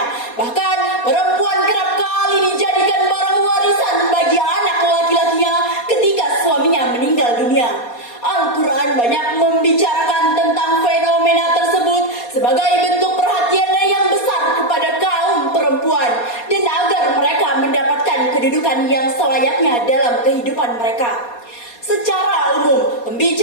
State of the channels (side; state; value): right; late; 4.2 ms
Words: Bahkan perempuan kerap kali dijadikan barang warisan bagi anak laki-lakinya ketika suaminya meninggal dunia. Al-Quran banyak membicarakan tentang fenomena tersebut sebagai bentuk perhatiannya yang besar kepada kaum perempuan dan agar mereka mendapatkan kedudukan yang selayaknya dalam kehidupan mereka. Secara umum,